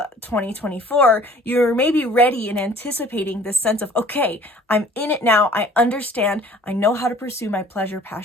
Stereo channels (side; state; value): both; normal; correlation 0.51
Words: 2024, you're maybe ready and anticipating this sense of, okay, I'm in it now. I understand. I know how to pursue my pleasure,